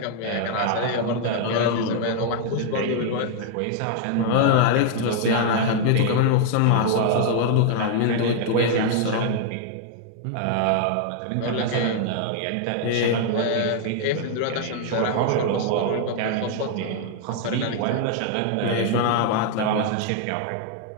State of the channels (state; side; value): different; both; correlation 0.00